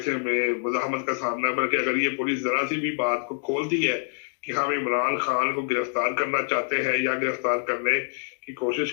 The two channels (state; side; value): silent; right; 61 dB below the other